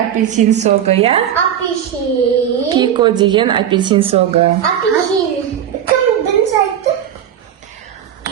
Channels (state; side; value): quieter; left; 9.8 dB